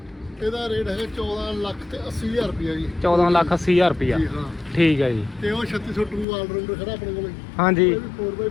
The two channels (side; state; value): right; drops out; at 6.2 s